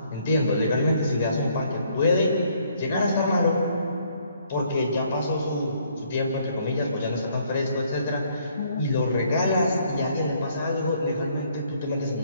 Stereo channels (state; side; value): inverted; both; correlation -0.66